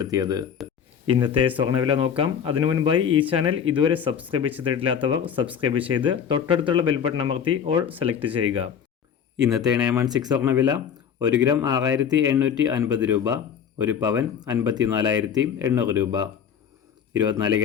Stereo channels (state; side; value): quieter; right; 7.9 dB